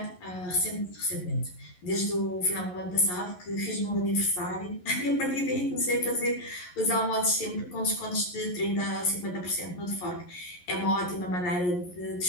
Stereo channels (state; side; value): late; right; 11 ms